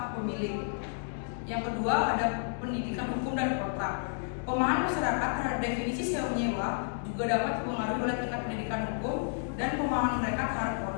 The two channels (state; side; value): silent; right; digital silence